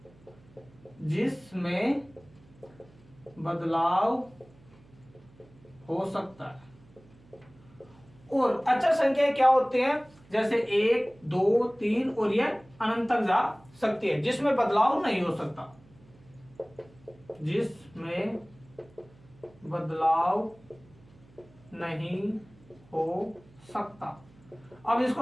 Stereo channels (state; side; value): noise; right; hum, 26 dB below the sound